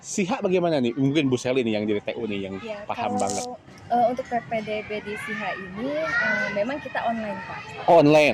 SIHA bagaimana nih? Mungkin Bu Seli nih yang di TU nih yang paham banget. Untuk PPDB di SIHA ini memang kita online, Pak.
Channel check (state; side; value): identical; both; correlation 1.00